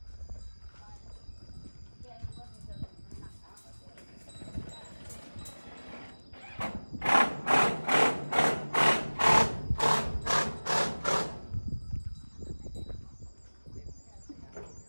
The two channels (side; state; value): both; inverted; correlation -1.00